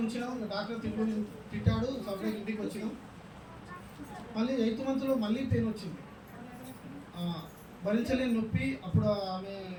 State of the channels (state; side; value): identical; both; correlation 1.00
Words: ఉంచినాం. డాక్టర్ తిట్టాడు, సపరేట్ ఇంటికి వచ్చినాం. మళ్ళీ 8th మంత్లో మళ్ళీ పెయిన్ వచ్చింది, భరించలేని నొప్పి. అప్పుడు ఆమె